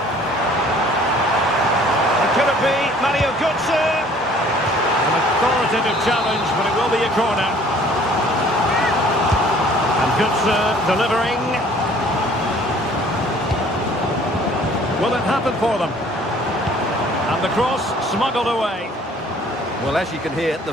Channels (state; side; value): normal; both; correlation 0.55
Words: Could it be Mario Götze? An authoritative challenge, but it will be a corner. And Götze delivering. Will it happen for them? And the cross smuggled away. Well, as you can hear, the